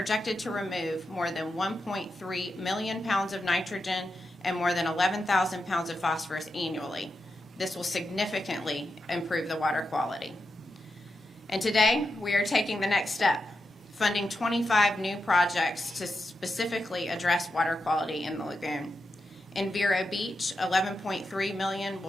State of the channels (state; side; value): normal; both; correlation 0.88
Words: to remove more than 1.3 million pounds of nitrogen and more than 11,000 pounds of phosphorus annually. This will significantly improve the water quality. And today, we are taking the next step, funding 25 new projects to specifically address water quality in the lagoon. In Vero Beach, $11.3 million